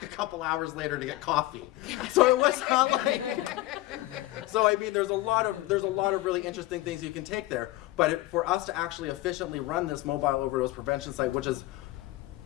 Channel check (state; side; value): quieter; right; 17.8 dB